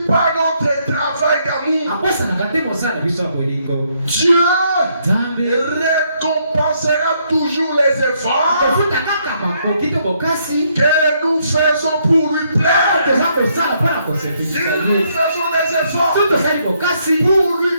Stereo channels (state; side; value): inverted; both; correlation -0.72